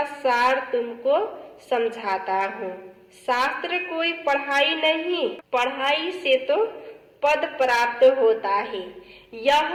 सार तुमको समझाता हूँ। शास्त्र कोई पढ़ाई नहीं, पढ़ाई से तो पद प्राप्त होता है।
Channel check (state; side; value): identical; both; correlation 1.00